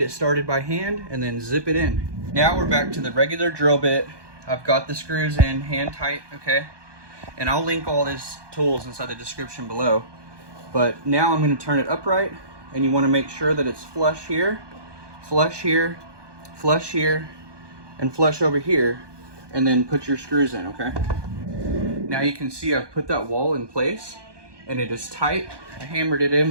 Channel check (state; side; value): late; left; 1.2 ms